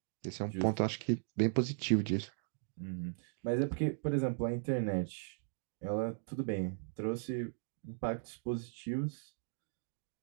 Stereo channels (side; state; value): left; silent; digital silence